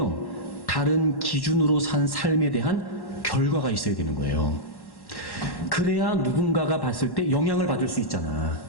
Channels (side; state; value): right; late; 1.1 ms